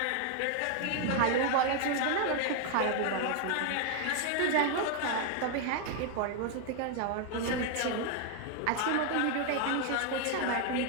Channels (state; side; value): different; both; correlation 0.00